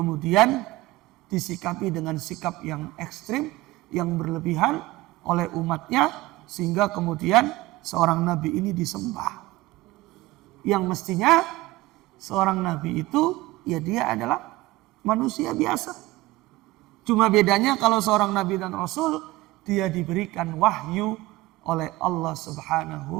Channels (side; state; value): left; quieter; 18.7 dB